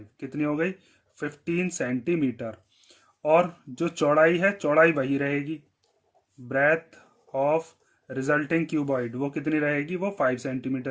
कितनी हो गई 15 सेंटीमीटर। और जो चौड़ाई है चौड़ाई वही रहेगी, ब्रेथ ऑफ रिजल्टिंग क्यूबॉइड वो कितनी रहेगी, वो 5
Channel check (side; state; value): both; identical; correlation 1.00